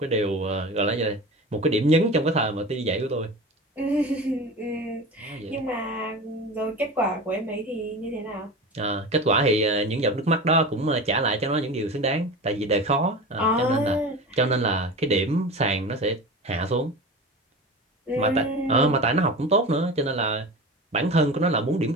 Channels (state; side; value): normal; both; correlation 0.30